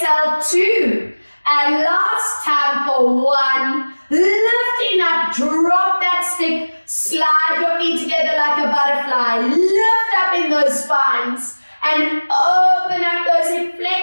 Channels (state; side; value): inverted; both; correlation -1.00